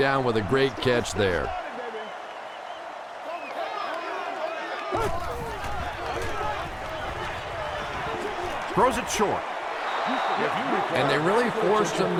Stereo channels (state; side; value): identical; both; correlation 1.00